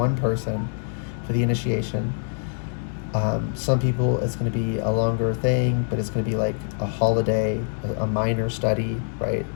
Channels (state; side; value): silent; right; digital silence